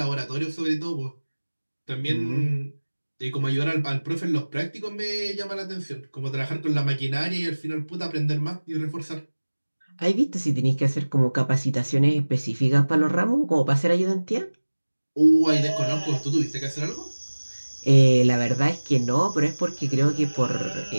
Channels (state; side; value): inverted; both; correlation -1.00